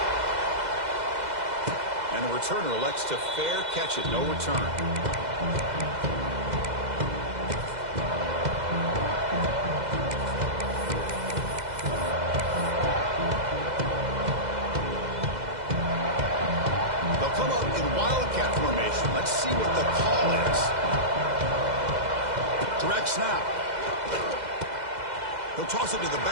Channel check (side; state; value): left; late; 2.0 ms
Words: And the returner elects to fair catch it. No return. They'll come up in wildcat formation. Let's see what the call is. Direct snap. He'll toss it to the